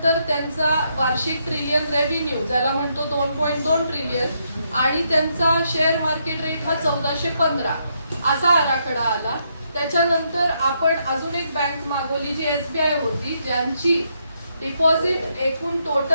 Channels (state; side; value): inverted; both; correlation -0.77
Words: त्यांचा वार्षिक ट्रिलियन रेव्हेन्यू ज्याला म्हणतो 2.2 ट्रिलियन आणि त्यांचा शेअर मार्केट रेट हा 1415 असा आराखडा आला। त्याच्यानंतर आपण अजून एक बँक मागवली जी SBI होती, ज्यांची डिपॉझिट एकूण